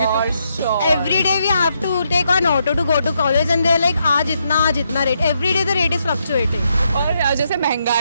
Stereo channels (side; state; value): both; inverted; correlation -0.78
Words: Every day we have to take an auto to go to college and they're like आज इतना rate. Every day the rate is fluctuating. और जैसे